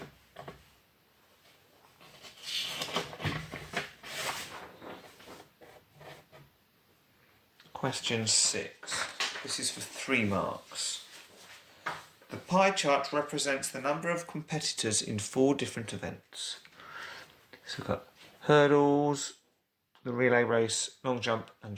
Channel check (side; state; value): both; identical; correlation 1.00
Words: Question 6. This is for 3 marks. The pie chart represents the number of competitors in 4 different events. So we've got hurdles, the relay race, long jump